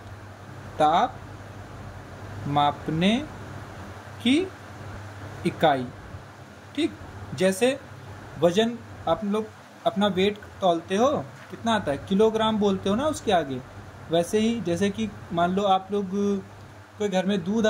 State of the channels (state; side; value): identical; both; correlation 1.00